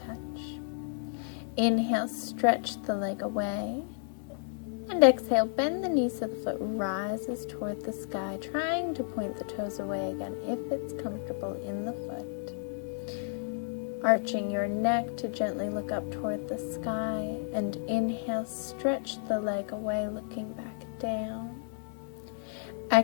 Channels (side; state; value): right; silent; 57 dB below the other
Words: Inhale, stretch the leg away. And exhale, bend the knee so the foot rises toward the sky, trying to point the toes away again if it's comfortable in the foot. Arching your neck to gently look up toward the sky. And inhale, stretch the leg away, looking back down.